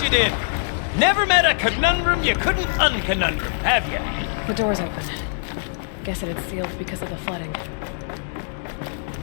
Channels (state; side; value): silent; right; digital silence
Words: you did. Never met a conundrum you couldn't unconundrum, have you? The door's open. Guess it had sealed because of the flooding.